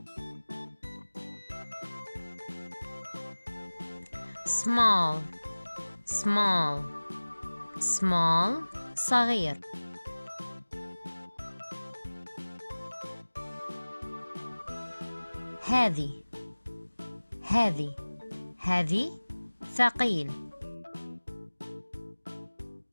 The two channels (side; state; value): both; inverted; correlation -1.00